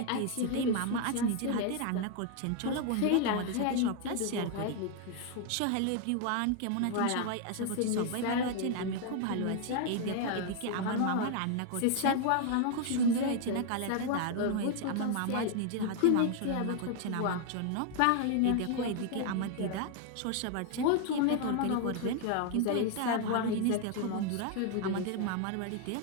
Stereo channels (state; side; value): different; both; correlation 0.00